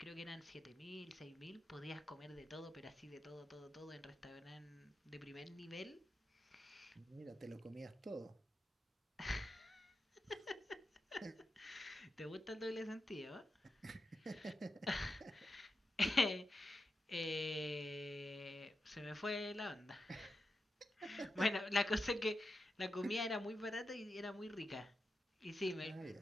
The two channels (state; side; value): normal; both; correlation 0.88